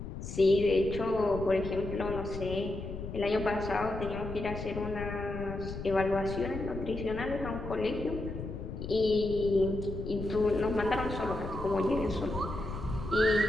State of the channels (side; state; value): left; noise; rumble, 8 dB below the sound